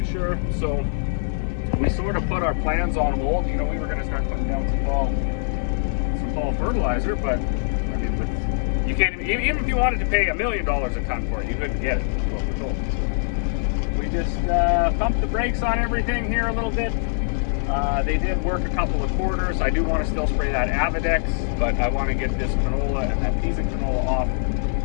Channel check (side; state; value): right; silent; 63 dB below the other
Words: sure. So we sort of put our plans on hold. We were going to start putting down some fall fertilizer, but I mean, you can't even if you wanted to pay $1 million a ton for it, you couldn't get it. That's what we're told. We just pumped the brakes on everything here a little bit. They did work a couple of quarters. I do want to still spray that Avidex, but I want to get this canola and that piece of canola off